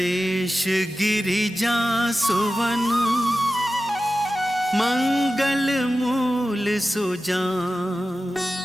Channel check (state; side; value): normal; both; correlation 0.94